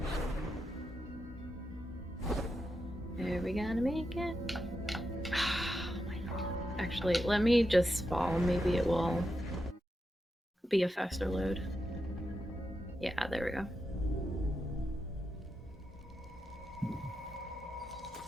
Are we gonna make it? Actually, let me just fall. Maybe it will be a faster load. Yeah, there we go.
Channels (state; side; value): normal; both; correlation 0.87